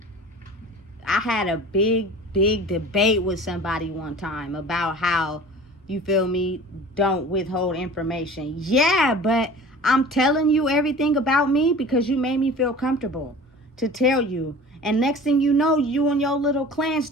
I had a big debate with somebody one time about how, you feel me, don't withhold information. Yeah, but I'm telling you everything about me because you made me feel comfortable to tell you. And next thing you know, you and your little clan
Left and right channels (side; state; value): both; normal; correlation 0.41